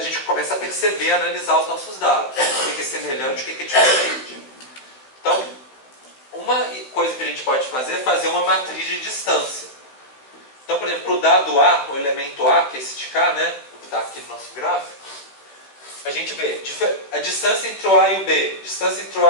gente começa a perceber, a analisar os nossos dados. O que é semelhante e o que é diferente. Então, uma coisa que a gente pode fazer é fazer uma matriz de distância. Então, por exemplo, para o dado A, o elemento A, que é esse de cá, né? Que está aqui no nosso gráfico, a gente vê a distância entre o A e o B, distância entre o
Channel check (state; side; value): late; right; 15 ms